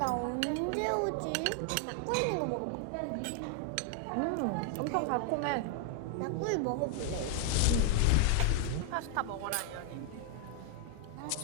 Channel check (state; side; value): different; both; correlation 0.00